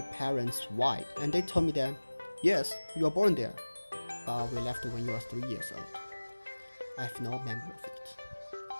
parents why, and they told me that, yes, you were born there, but we left when you were 3 years old. I have no memory of it.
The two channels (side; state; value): both; inverted; correlation -1.00